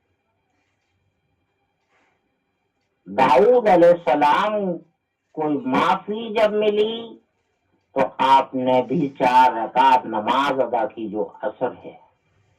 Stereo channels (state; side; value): identical; both; correlation 1.00